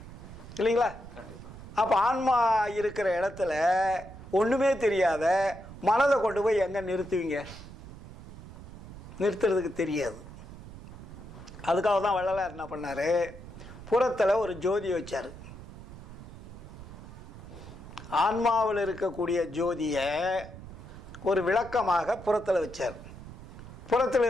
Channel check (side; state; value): right; noise; rumble, 14 dB below the sound